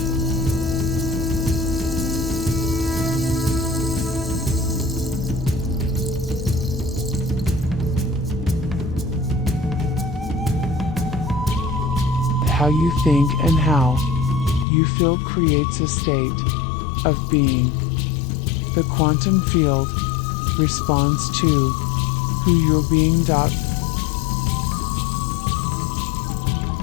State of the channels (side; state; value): right; drops out; at 14.7 s